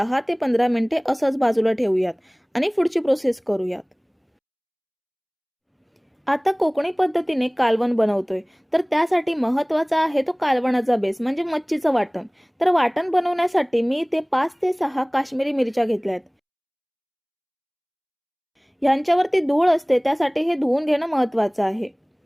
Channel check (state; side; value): identical; both; correlation 1.00